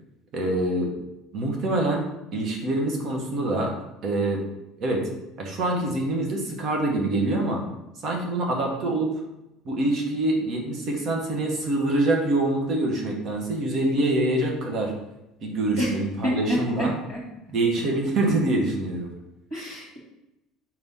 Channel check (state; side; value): normal; both; correlation 0.42